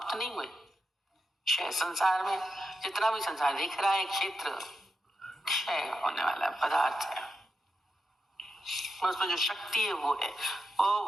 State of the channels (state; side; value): normal; both; correlation 0.87